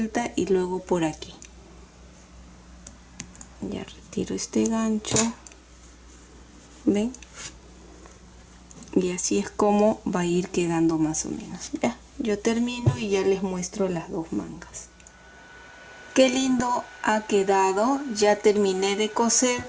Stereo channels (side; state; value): both; identical; correlation 1.00